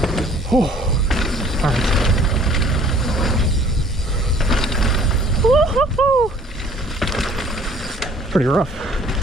Oh. All right. Woo-hoo-hoo! Pretty rough.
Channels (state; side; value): normal; both; correlation 0.55